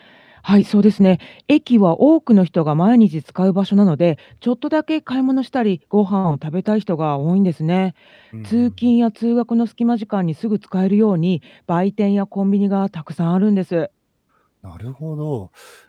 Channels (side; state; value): both; identical; correlation 1.00